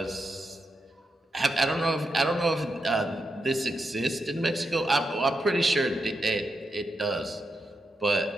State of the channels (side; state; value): both; normal; correlation 0.85